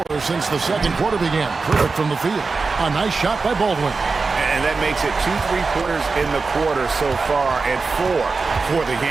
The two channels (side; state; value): left; quieter; 4.3 dB